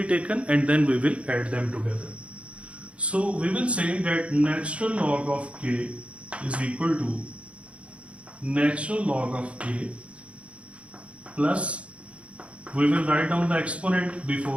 taken and then we will add them together. So we will say that natural log of K is equal to natural log of A plus, we will write down the exponent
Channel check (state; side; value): late; left; 0.062 ms